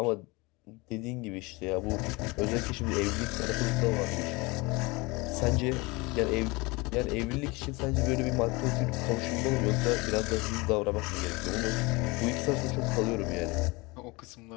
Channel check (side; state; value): right; quieter; 24.8 dB